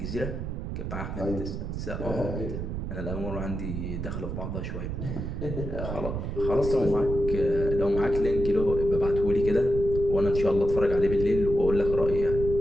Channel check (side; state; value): right; noise; rumble, 5 dB below the sound